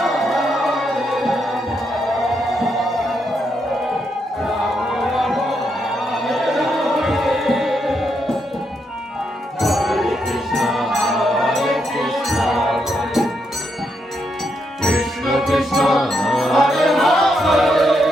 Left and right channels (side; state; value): both; normal; correlation 0.79